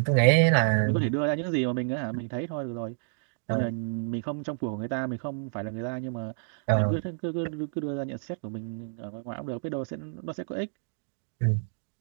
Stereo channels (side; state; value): left; silent; digital silence